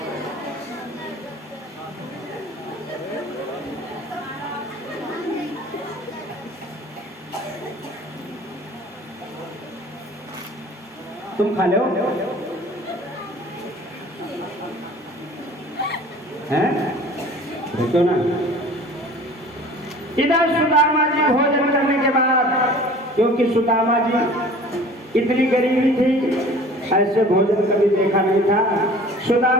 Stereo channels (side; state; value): both; normal; correlation 0.45